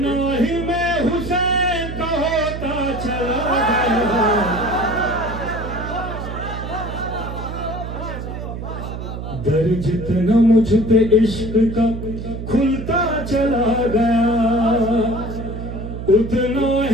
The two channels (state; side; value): noise; right; hum, 7 dB below the sound